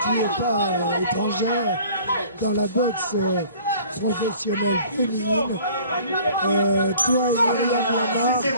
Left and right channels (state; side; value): inverted; both; correlation -0.50